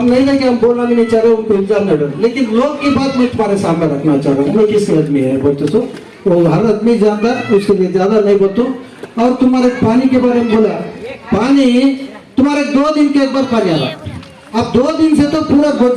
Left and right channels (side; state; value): both; identical; correlation 1.00